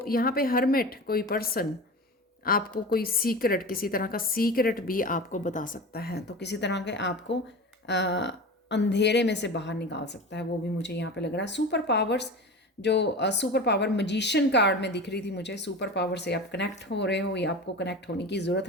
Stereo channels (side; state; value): both; normal; correlation 0.31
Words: यहाँ पे हर्मिट, कोई पर्सन आपको कोई सीक्रेट, किसी तरह का सीक्रेट भी आपको बता सकता है, तो किसी तरह के आपको अंधेरे में से बाहर निकाल सकता है, वो भी मुझे यहाँ पे लग रहा है। सुपर पावर्स, जो सुपर पावर मजिशियन कार्ड में दिख रही थी मुझे, सुपर पावर से आप कनेक्ट हो रहे हो या आपको कनेक्ट होने की ज़रूरत